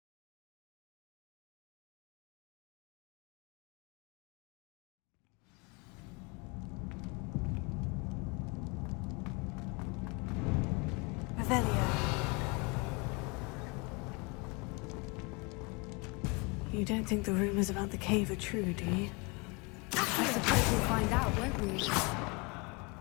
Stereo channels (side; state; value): right; quieter; 29.0 dB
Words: You don't think the rumors about the cave are true, do you? I suppose we'll find out, won't we?